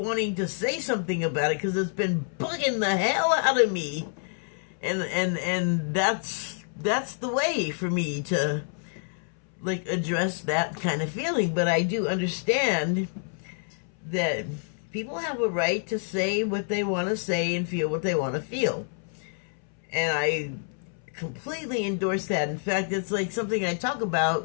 to say something about it because it's been bugging the hell out of me. And that's the way for me to like address that kind of feeling. But I do understand that people have a right to say what they want to say and feel what they want to feel. And I completely endorse that. In fact, it's like something I talk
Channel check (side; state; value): right; silent; 60 dB below the other